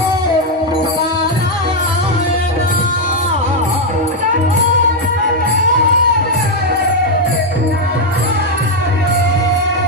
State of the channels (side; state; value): both; normal; correlation 0.02